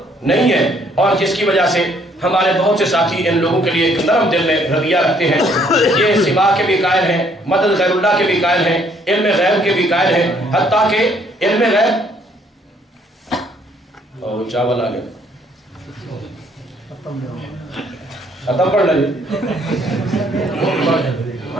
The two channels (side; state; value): both; normal; correlation 0.65